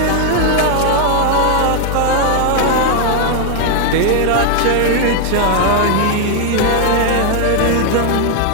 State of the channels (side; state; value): both; different; correlation 0.01